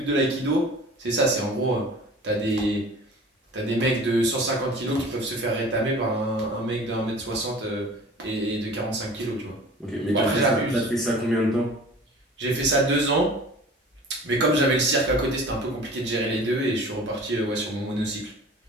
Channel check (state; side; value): normal; both; correlation 0.43